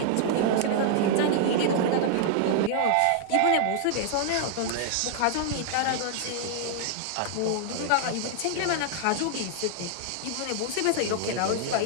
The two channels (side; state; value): both; different; correlation -0.01